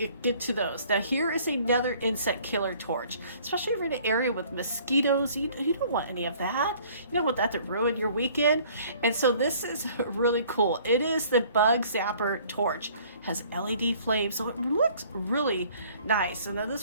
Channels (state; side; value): inverted; both; correlation -0.55